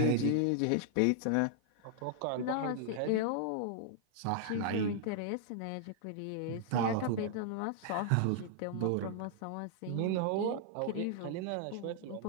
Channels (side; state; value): both; different; correlation -0.01